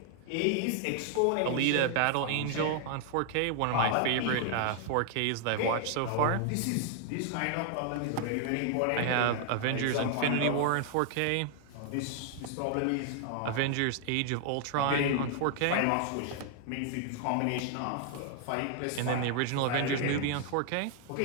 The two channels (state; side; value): different; both; correlation 0.00